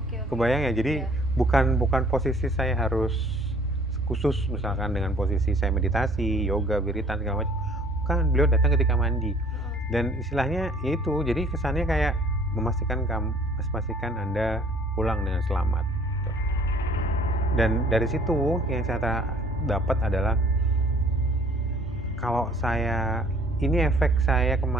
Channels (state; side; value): normal; both; correlation 0.55